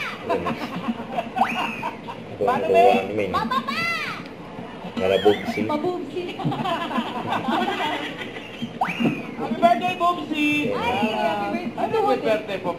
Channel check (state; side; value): identical; both; correlation 1.00